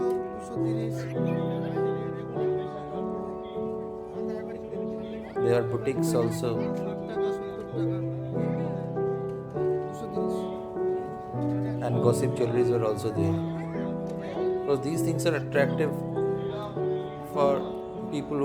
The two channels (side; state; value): both; identical; correlation 1.00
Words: There are boutiques also. and gossip jewelries were also there. Because these things are attractive for people